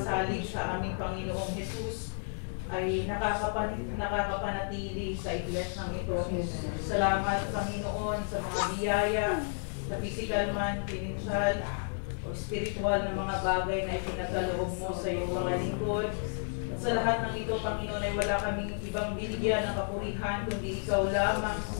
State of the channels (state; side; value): silent; right; 56 dB below the other